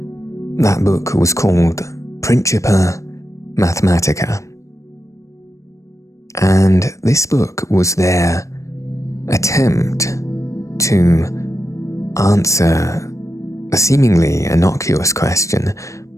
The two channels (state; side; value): late; right; 0.15 ms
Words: that book was called Principia Mathematica. And this book was their attempt to answer a seemingly innocuous question: